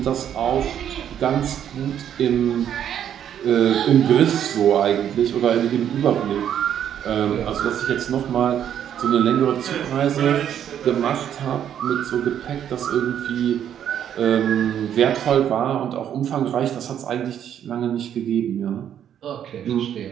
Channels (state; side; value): quieter; left; 9.7 dB